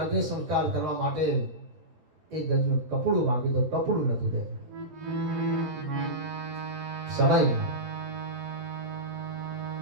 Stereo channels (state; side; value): late; left; 12 ms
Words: સંસ્કાર કરવા માટે એક ગજનું કપડું માંગ્યું તો કપડું નથી દે. સમય